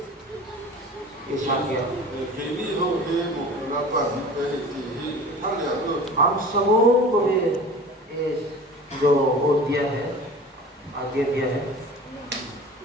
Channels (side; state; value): both; normal; correlation 0.40